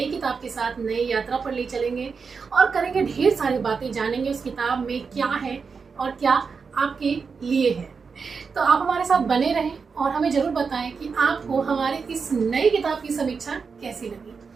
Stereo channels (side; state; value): left; quieter; 5.3 dB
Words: किताब के साथ, नई यात्रा पर ले चलेंगे और करेंगे ढेर सारी बातें, जानेंगे उस किताब में क्या है और क्या आपके लिए है। तो आप हमारे साथ बने रहें और हमें जरूर बताएं कि आपको हमारे इस नई किताब की समीक्षा कैसी लगी।